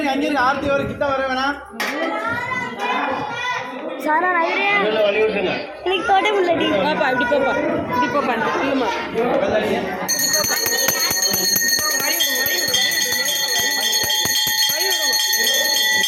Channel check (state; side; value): identical; both; correlation 1.00